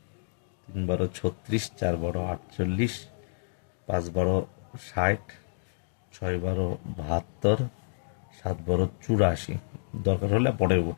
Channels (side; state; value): right; silent; digital silence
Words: 3 12 36, 4 12 48, 5 12 60, 6 12 72, 7 12 84। দরকার হলে